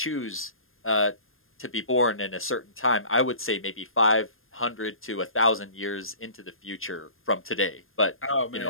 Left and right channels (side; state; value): right; late; 0.60 ms